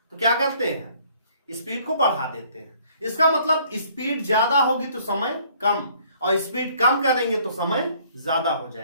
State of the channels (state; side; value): inverted; both; correlation -0.60